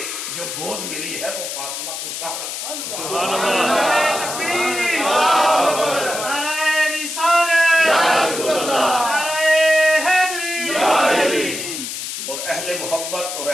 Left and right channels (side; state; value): left; noise; hiss, 6 dB below the sound